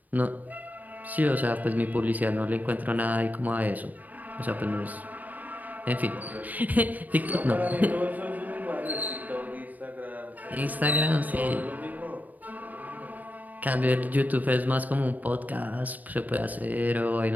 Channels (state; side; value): late; left; 0.080 ms